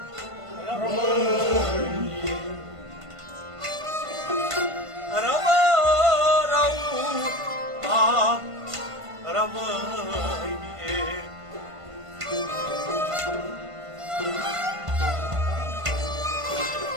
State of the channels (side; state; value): left; late; 1.5 ms